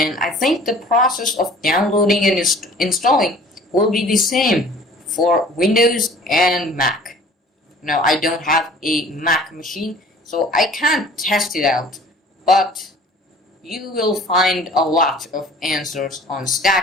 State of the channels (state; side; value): normal; both; correlation 0.49